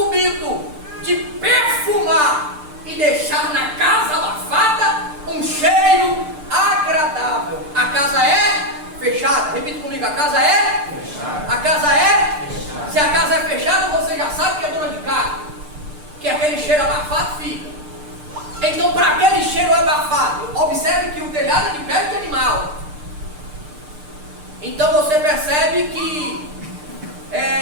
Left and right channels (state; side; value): late; left; 6.7 ms